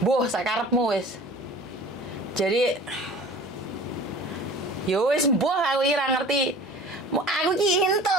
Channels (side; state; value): both; normal; correlation 0.44